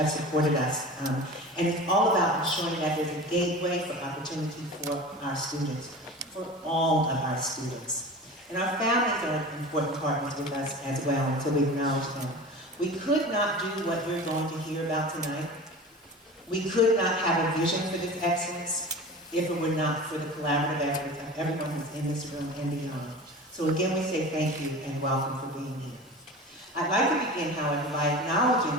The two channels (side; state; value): both; normal; correlation 0.34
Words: supported us. And it's all about ensuring that there's a gateway for opportunity for our students, for all of our students. And our families are important partners with us as well, and so we acknowledge them. We could not do what we're going to hear about tonight. We could not have a vision for this excellence if it were not for the collaborative efforts of everyone who's in this room and beyond. So again, we say thank you and welcome for being here. I'd like to begin, however, by